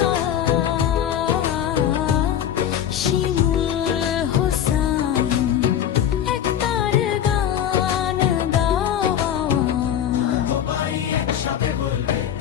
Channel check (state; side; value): quieter; right; 10.0 dB